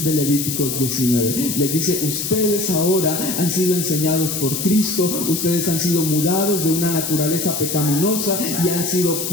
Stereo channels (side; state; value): left; noise; hiss, 3 dB below the sound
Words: de Levíticos 19. Les dice, ustedes ahora han sido enseñados por Cristo, ustedes han sido mudados de una naturaleza pecaminosa y han sido